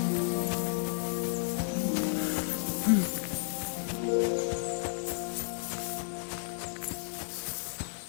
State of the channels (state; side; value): silent; right; digital silence